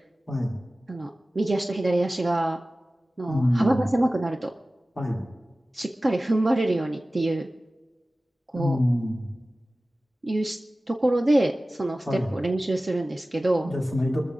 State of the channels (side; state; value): both; normal; correlation 0.97